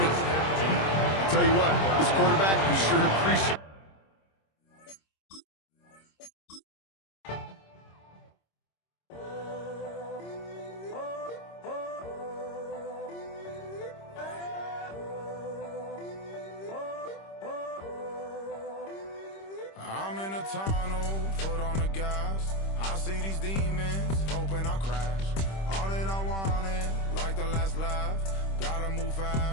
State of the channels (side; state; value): right; late; 26 ms